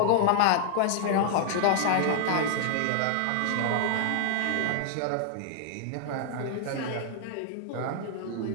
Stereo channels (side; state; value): both; different; correlation 0.00